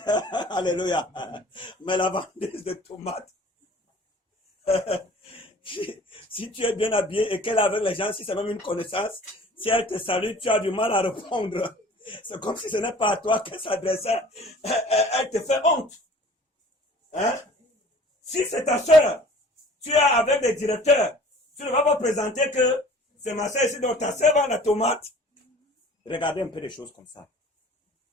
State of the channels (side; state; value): both; normal; correlation 0.48